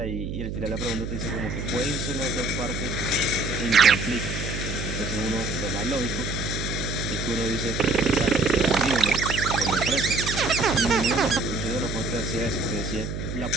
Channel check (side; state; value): right; noise; hum, 5 dB below the sound